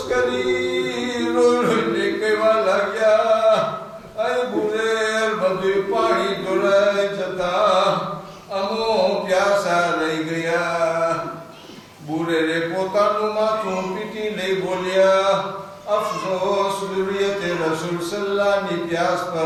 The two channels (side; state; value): both; identical; correlation 1.00